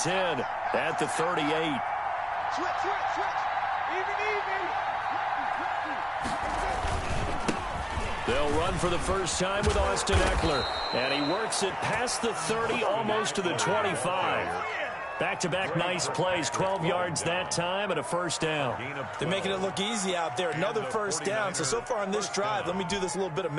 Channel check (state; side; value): identical; both; correlation 1.00